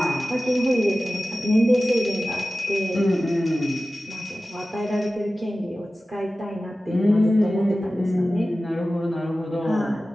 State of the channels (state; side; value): normal; both; correlation 0.95